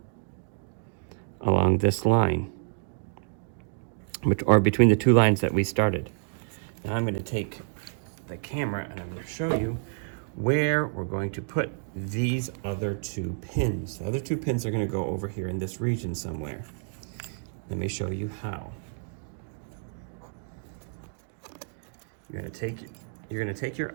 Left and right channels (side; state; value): left; silent; digital silence